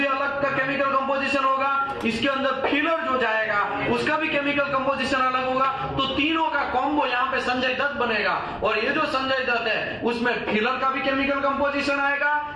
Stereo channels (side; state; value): both; identical; correlation 1.00